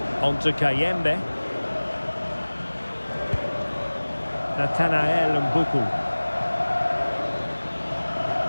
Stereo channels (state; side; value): inverted; both; correlation -1.00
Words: On to Kayembe. Nathanael Mbuku.